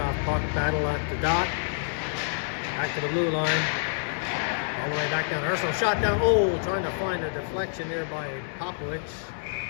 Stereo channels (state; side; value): silent; right; digital silence